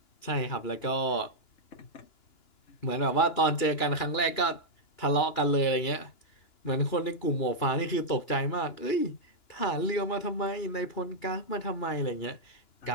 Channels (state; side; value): late; right; 2.9 ms